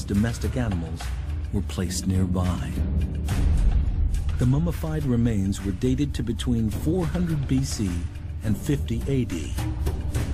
domestic animals were placed nearby. The mummified remains were dated to between 400 BC and 50 AD.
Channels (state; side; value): identical; both; correlation 1.00